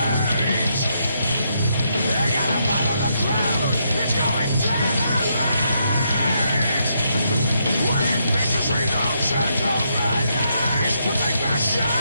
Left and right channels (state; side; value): inverted; both; correlation -0.78